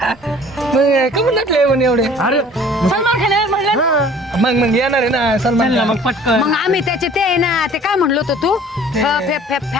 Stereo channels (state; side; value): normal; both; correlation 0.50